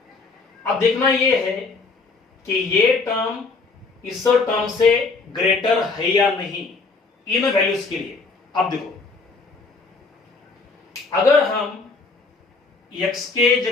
अब देखना यह है कि ये टर्म इस टर्म से ग्रेटर है या नहीं इन वैल्यूज के लिए। अब देखो, अगर हम x के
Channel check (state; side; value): quieter; right; 4.1 dB